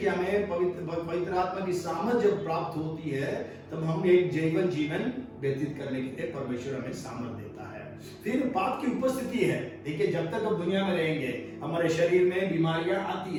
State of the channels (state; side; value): identical; both; correlation 1.00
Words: हमें पवित्र आत्मा की सामर्थ जब प्राप्त होती है तब हम एक जीवन व्यतीत करने के लिए परमेश्वर हमें सामर्थ देता है। फिर पाप की उपस्थिति है। देखिए, जब तक हम दुनिया में रहेंगे हमारे शरीर में बीमारियां आती